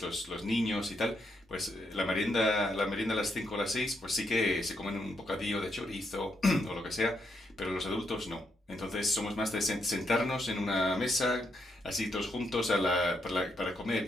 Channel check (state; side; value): normal; both; correlation 0.79